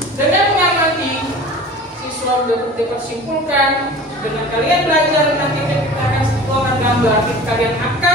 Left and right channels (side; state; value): both; normal; correlation 0.40